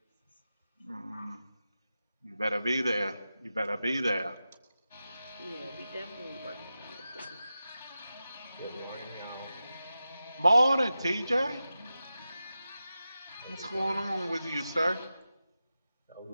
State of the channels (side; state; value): both; inverted; correlation -0.92